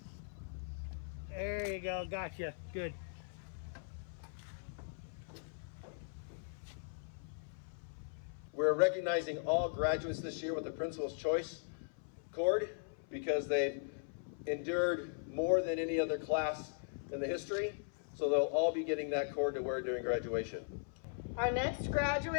There you go. Gotcha. Good. We're recognizing all graduates this year with the Principal's Choice cord because they've endured more than any other class in the history. So they'll all be getting that cord to wear during graduation. Our next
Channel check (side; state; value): right; silent; 52 dB below the other